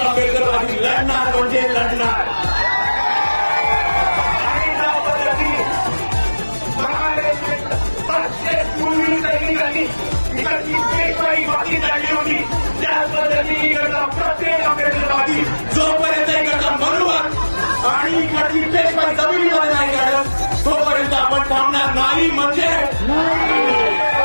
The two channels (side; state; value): both; inverted; correlation -1.00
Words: आंबेडकरवादी लढणार म्हणजे लढणार. बाकी काढली होती त्याच पद्धतीने इकडचा प्रत्येक आंबेडकरवादी जोपर्यंत इकडचा मनुवाद आणि इकडची पेशवाई जमिनीमध्ये नाही काढत तोपर्यंत आपण थांबणार नाही म्हणजे